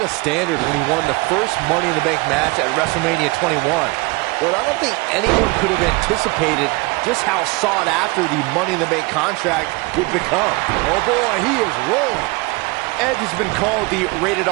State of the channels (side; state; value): left; quieter; 25.6 dB